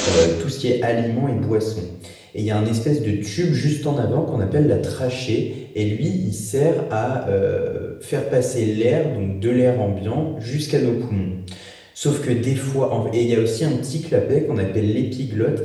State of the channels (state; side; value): identical; both; correlation 1.00